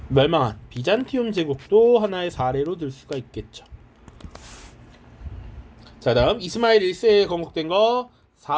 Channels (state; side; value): identical; both; correlation 1.00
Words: 멸망한 비잔티움 제국도 하나의 사례로 들 수가 있겠죠. 자, 다음 이스마일 1세에 건국된 거